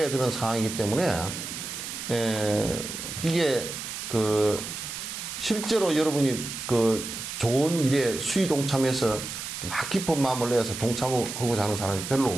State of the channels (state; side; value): noise; right; hiss, 7 dB below the sound